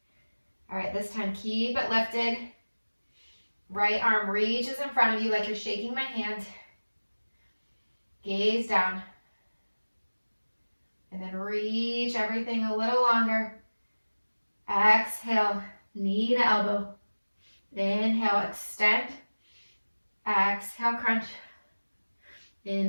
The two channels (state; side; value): inverted; both; correlation -1.00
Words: All right, this time keep it lifted. Right arm reaches in front of you like you're shaking my hand. Gaze down. then reach everything a little longer. Exhale, knee to elbow. Inhale, extend. Exhale, crunch.